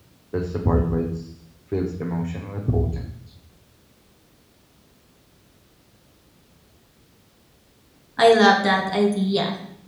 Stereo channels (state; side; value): identical; both; correlation 1.00